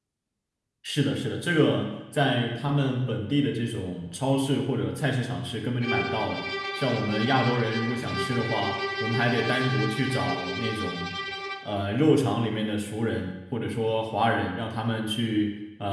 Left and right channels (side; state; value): both; identical; correlation 1.00